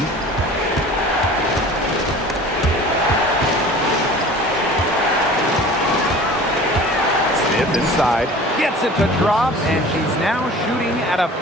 Smith inside. Gets it to drop, and she's now shooting at a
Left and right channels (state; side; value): normal; both; correlation 0.42